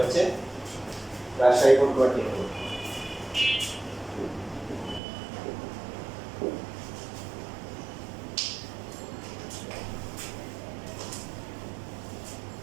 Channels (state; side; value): drops out; left; at 5.0 s